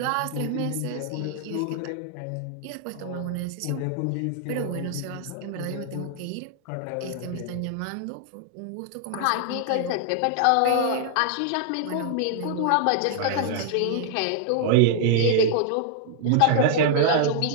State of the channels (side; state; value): both; different; correlation 0.00